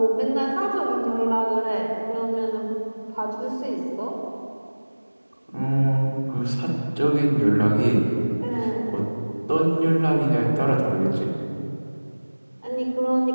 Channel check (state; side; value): inverted; both; correlation -1.00